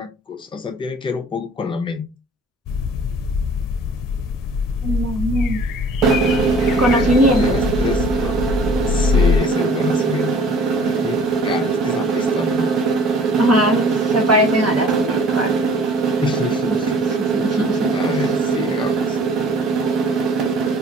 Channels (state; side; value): normal; both; correlation 0.51